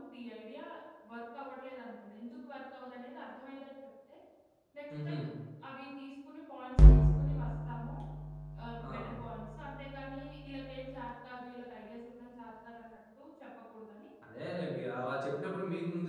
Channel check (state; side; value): identical; both; correlation 1.00